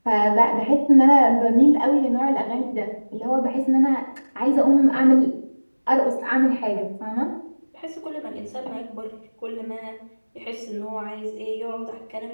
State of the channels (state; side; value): inverted; both; correlation -1.00